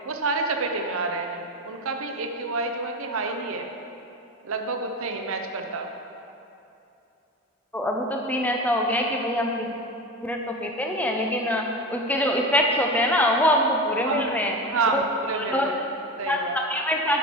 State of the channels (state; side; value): normal; both; correlation 0.25